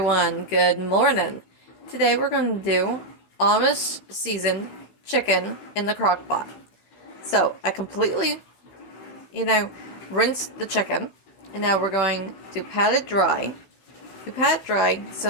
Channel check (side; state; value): right; late; 16 ms